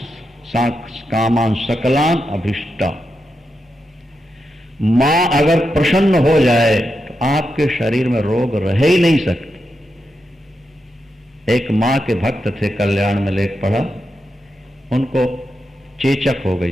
कामान सकलान अभिष्टा। मां अगर प्रसन्न हो जाए तो आपके शरीर में रोग रह ही नहीं सकते। एक मां के भक्त थे, कल्याण में लेख पढ़ा, उनको चेचक हो गई,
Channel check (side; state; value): both; normal; correlation 0.87